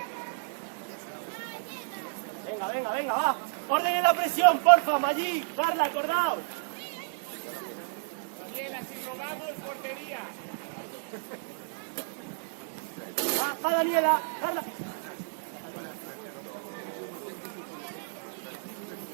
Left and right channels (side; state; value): left; silent; digital silence